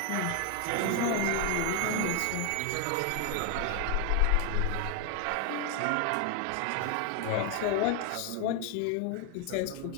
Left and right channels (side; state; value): both; different; correlation 0.01